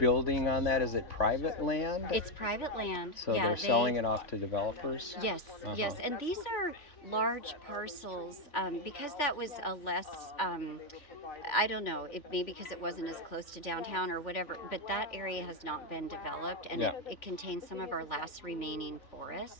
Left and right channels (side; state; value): right; late; 3.4 ms